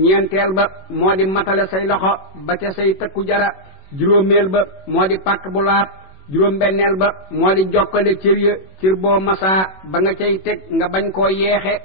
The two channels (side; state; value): right; late; 21 ms